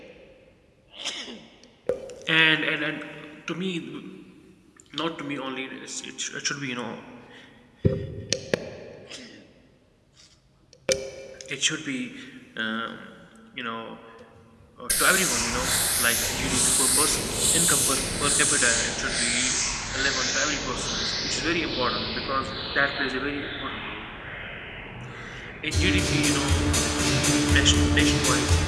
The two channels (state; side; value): identical; both; correlation 1.00